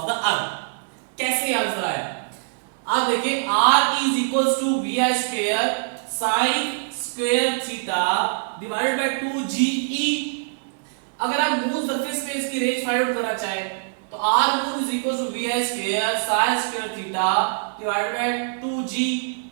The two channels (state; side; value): silent; left; digital silence